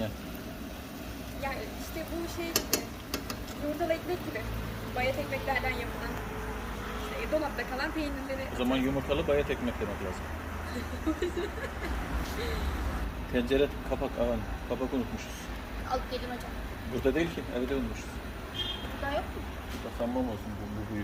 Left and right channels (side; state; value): both; identical; correlation 1.00